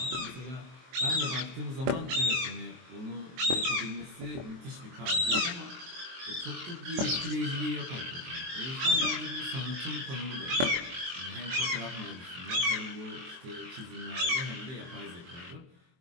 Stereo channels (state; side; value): late; left; 23 ms